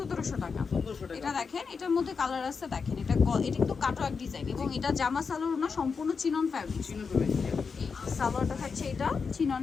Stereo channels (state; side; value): quieter; right; 5.3 dB